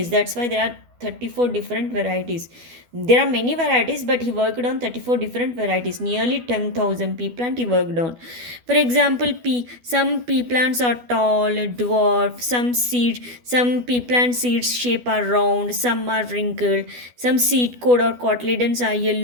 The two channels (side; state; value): left; late; 12 ms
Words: That's why there are 34 different varieties. There are many varieties, but he worked on 34 different varieties. Nearly 10,000 pea plant he worked on. For example, some pea plants are tall, dwarf, some pea plant seeds shape are round, some are wrinkled, some seed coat or cotyledons are